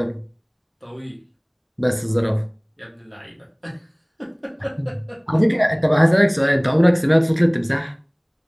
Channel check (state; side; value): identical; both; correlation 1.00